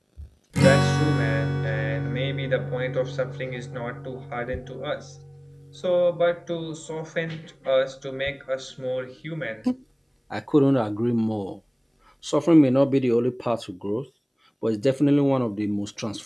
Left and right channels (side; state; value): both; identical; correlation 1.00